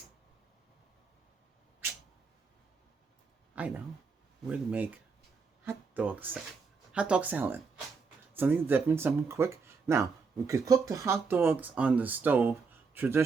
I know, we're going to make hot dog salad. Something different, something quick. Now we could cook the hot dogs on the stove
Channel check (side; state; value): left; quieter; 4.9 dB